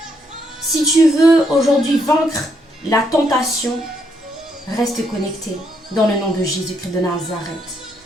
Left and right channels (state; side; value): normal; both; correlation 0.75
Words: si tu veux aujourd'hui vaincre la tentation, reste connecté dans le nom de Jésus-Christ de Nazareth.